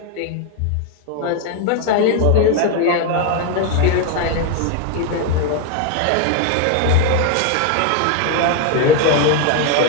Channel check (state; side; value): different; both; correlation 0.01